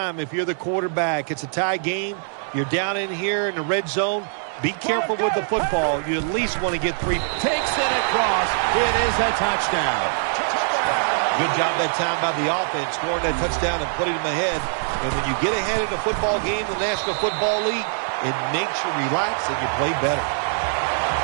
if you're the quarterback. It's a tie game. You're down in here in the red zone. Be careful with the football. You at least want to get 3. Takes it across. It is a touchdown. Good job that time by the offense, scoring that touchdown and putting them ahead. And when you get ahead in a football game in the National Football League, it makes you relax and you play better.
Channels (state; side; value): silent; left; digital silence